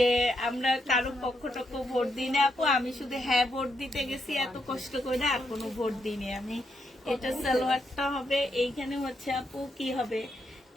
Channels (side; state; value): both; normal; correlation 0.80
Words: আমরা কারো পক্ষ টক্ষ ভোট দিই না আপু। আমি শুধু হ্যাঁ ভোট দিতে গেছি এত কষ্ট করে, আর কোনো ভোট দিইনি আমি। এটা সালোয়ারটা হবে। এইখানে হচ্ছে আপু কি হবে,